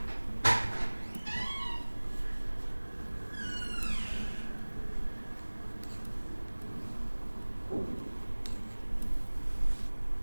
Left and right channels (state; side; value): inverted; both; correlation -1.00